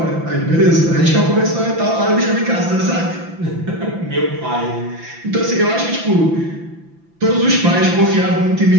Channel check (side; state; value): left; late; 5.9 ms